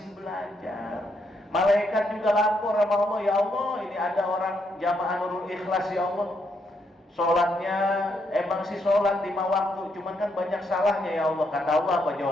belajar. Malaikat juga lapor sama Allah, ya Allah, ini ada orang jamaah Nurul Ikhlas ya Allah. Sholatnya emang sih sholat 5 waktu, cuman kan banyak salahnya ya Allah. Kata Allah apa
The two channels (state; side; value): normal; both; correlation 0.76